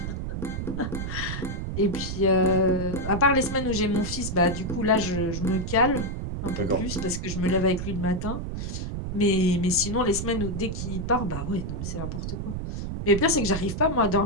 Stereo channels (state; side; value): noise; right; rumble, 4 dB below the sound